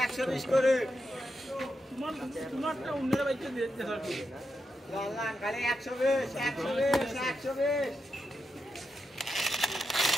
করে তোমারটা অন্যরা বাইতে দিতে হবে লাল কালে 120 120 120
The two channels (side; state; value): both; normal; correlation 0.86